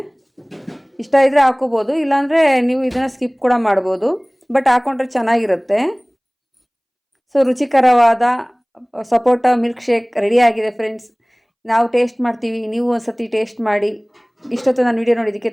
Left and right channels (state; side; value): identical; both; correlation 1.00